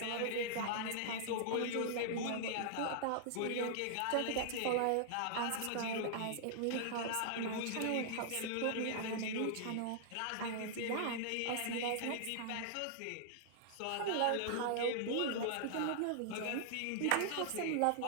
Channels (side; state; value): both; different; correlation -0.01